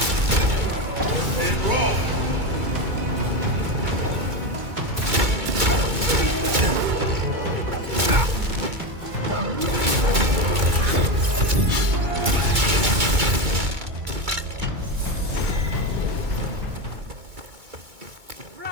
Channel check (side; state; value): left; late; 2.2 ms